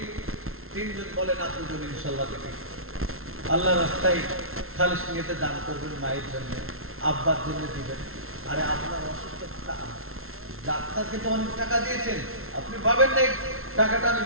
তিনজন বলেন, দুজন ইনশাআল্লাহ দেখি। আল্লাহ রাস্তায় খালিস নিয়েতে দান করবেন, মায়ের জন্য, আব্বার জন্য দিবেন। আরে আপনার অসুস্থ, ডাক্তারকে তো অনেক টাকা দিয়েছেন, আপনি পাবেন না টাকাটা আমি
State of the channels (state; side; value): late; left; 0.62 ms